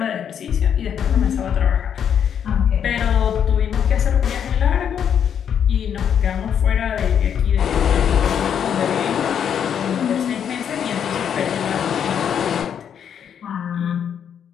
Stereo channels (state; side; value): quieter; right; 8.4 dB